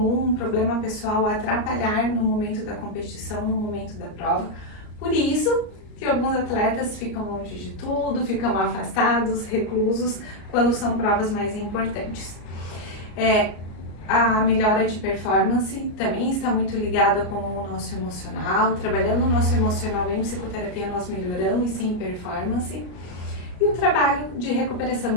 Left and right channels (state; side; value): late; right; 34 ms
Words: um problema pessoal atrapalhar no momento da competição, no momento da prova. Por isso que alguns atletas ficam longe de tudo, ficam afastados, reclusos, quando são provas mais importantes. A melhora de performance também está muito ligada com o nosso emocional. Trabalhando o nosso emocional em psicoterapia, nós melhoramos sim performance. E o trabalho de